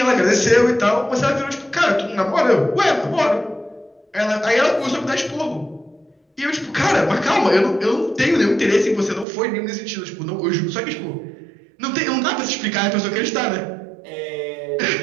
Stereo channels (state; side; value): drops out; left; at 9.2 s